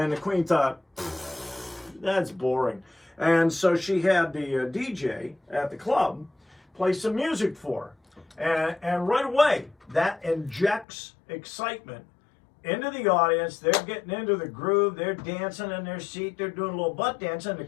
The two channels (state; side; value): drops out; right; at 10.9 s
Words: the Queen thought, that's boring. And so she had the DJ at the club play some music for her. And right away, that injects excitement into the audience. They're getting into the groove. They're dancing in their seat. They're doing a little butt dancing. The